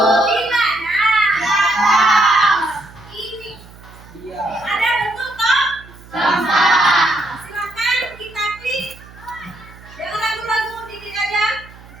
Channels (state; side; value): noise; right; hum, 21 dB below the sound